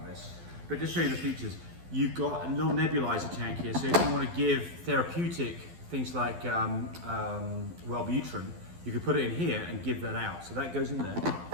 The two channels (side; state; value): left; late; 12 ms